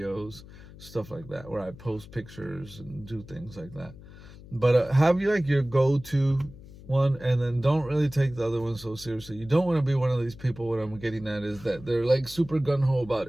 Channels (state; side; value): noise; left; hum, 18 dB below the sound